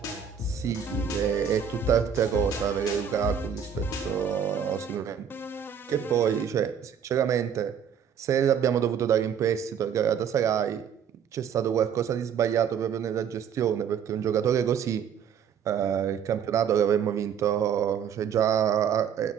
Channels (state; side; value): quieter; left; 7.9 dB